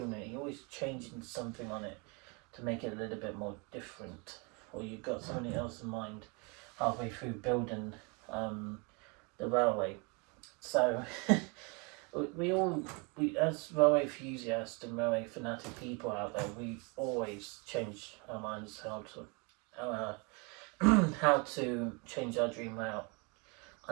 it, you're always changing something on it to make it a little bit more different, or you've got something else in mind halfway through building the railway. So we as railway enthusiasts and railway fanatic people out there, we always change our minds how to change our dream layout.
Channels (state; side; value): quieter; left; 31.4 dB